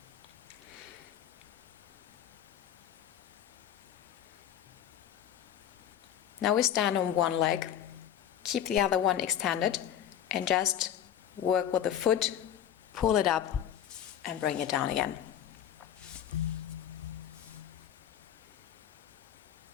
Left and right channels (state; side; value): quieter; right; 10.1 dB